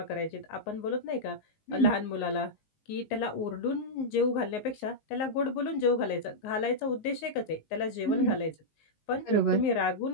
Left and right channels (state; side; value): late; right; 19 ms